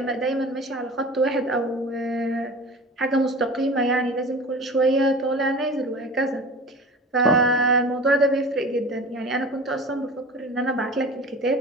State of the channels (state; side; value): normal; both; correlation 0.37